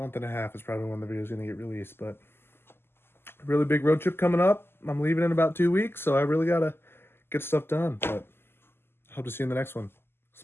and a half is probably when the video is going to get released. But a really big road trip coming up. I'm leaving in about 2 weeks, so I really got to get stuff done. But I hope to see you in the next one.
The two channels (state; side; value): late; right; 0.11 ms